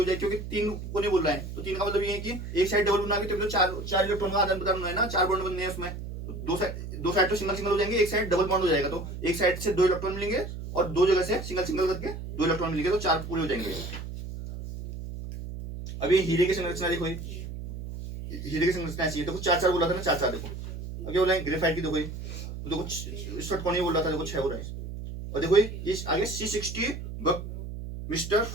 जाएगी, क्योंकि 3 को नहीं बोल रहा है। तो 3 का मतलब ये है कि एक साइड डबल बना के तो 4 इलेक्ट्रॉन का आदान प्रदान है ना, 4 बॉन्ड बनने हैं उसमें। तो दो साइड तो सिंगल हो जाएंगे, एक साइड डबल बॉन्ड हो जाएगा, तो एक साइड से 2 इलेक्ट्रॉन मिलेंगे और 2 जगह से सिंगल करके 2 इलेक्ट्रॉन मिलेंगे, तो 4 पूरे हो जाएंगे। अब ये हीरे की संरचना देखो, हीरे की संरचना ऐसी है, देखो 4 बोला था ना, 4 देखो। अब क्या बोला है, ग्रेफाइट की देखो, तो देखो षटकोणीय बोल रहा था, देखो 6 हो रहा है। और देखो ये आगे C60 बकमिस्टर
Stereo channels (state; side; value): noise; right; hum, 8 dB below the sound